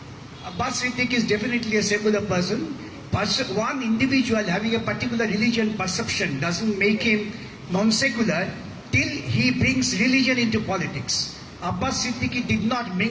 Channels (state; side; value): identical; both; correlation 1.00